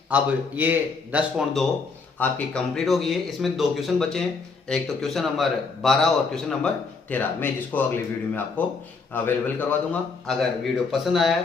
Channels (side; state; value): right; quieter; 4.6 dB